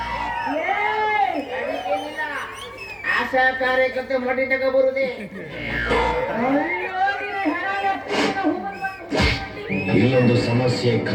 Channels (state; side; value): identical; both; correlation 1.00